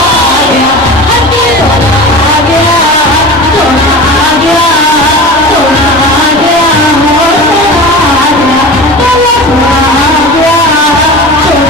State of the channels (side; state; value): both; normal; correlation 0.33